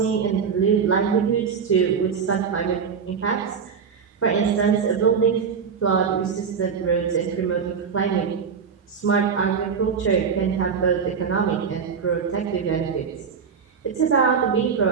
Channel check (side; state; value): left; quieter; 6.3 dB